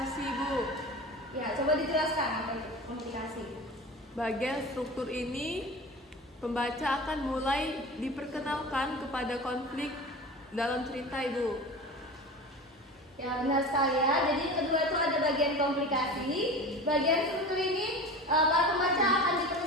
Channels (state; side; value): normal; both; correlation 0.33